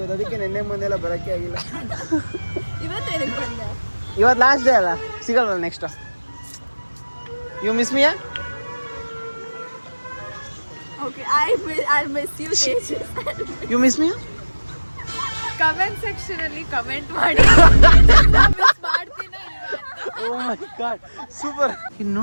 ಅದಕ್ಕೆ ನೆನ್ನೆ ಮೊನ್ನೆಲ್ಲ ಬರೋಕ್ಕೆ ಆಗಿಲ್ಲ. ಇವತ್ತು ಲಾಸ್ಟ್ ಡೇ ಅಲ್ಲ, ಸಿಗಲ್ವಲ್ಲ next. You miss me? You miss me? Comment section ಅಲ್ಲಿ ಕಮೆಂಟ್ ಮಾಡಿ. Oh my god, super. ಇನ್ನು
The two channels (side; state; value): both; inverted; correlation -1.00